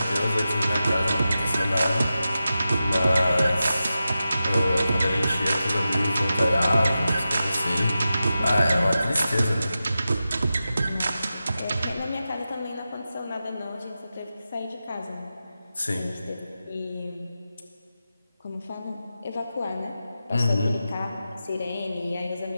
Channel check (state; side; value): inverted; both; correlation -0.92